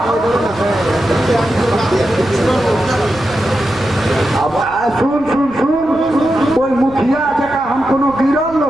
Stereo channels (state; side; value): noise; right; rumble, 20 dB below the sound